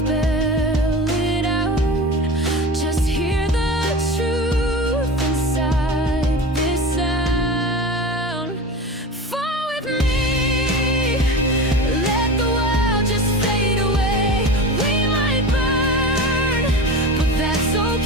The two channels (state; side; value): normal; both; correlation 0.30